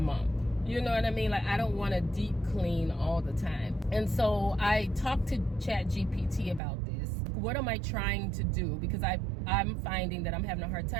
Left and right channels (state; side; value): drops out; left; at 6.6 s